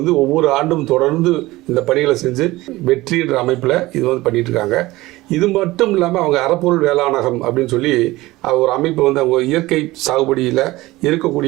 ஒவ்வொரு ஆண்டும் தொடர்ந்து இந்த பணிகளை செஞ்சு வெற்றின்ற அமைப்பில் இது வந்து பண்ணிட்டு இருக்காங்க. இது மட்டும் இல்லாமல் அவங்க அறப்பொருள் வேளாணகம் அப்படின்னு சொல்லி ஒரு அமைப்பு வந்து அவங்க இயற்கை சாகுபடியில்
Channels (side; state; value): left; quieter; 18.9 dB